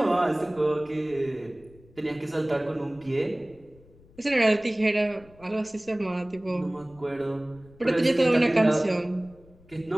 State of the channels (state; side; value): noise; left; rumble, 26 dB below the sound